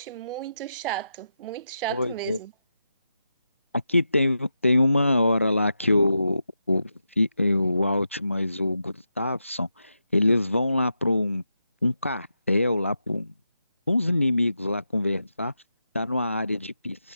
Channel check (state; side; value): inverted; both; correlation -0.87